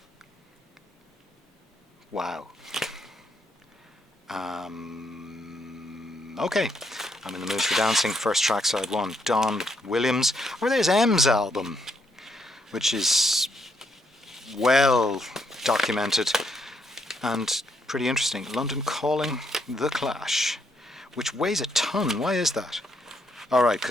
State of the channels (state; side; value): normal; both; correlation 0.74